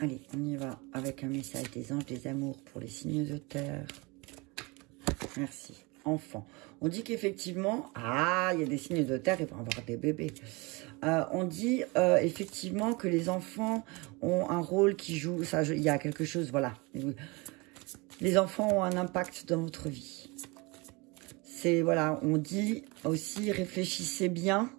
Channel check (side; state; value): left; quieter; 26.4 dB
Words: on y va avec un message des anges, des amours pour les signes de terre. Merci. Enfant. On dit qu'effectivement, il y a des signes de terre, il va y avoir des bébés. On dit effectivement que les enfants ont un rôle qui joue, ça, il y a quelque chose, voilà. Les enfants ont un impact dans votre vie. C'est, voilà, on dit aussi, réfléchissez bien